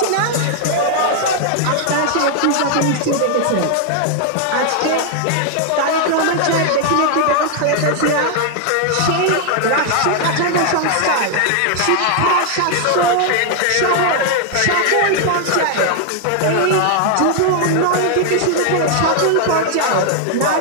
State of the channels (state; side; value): different; both; correlation 0.00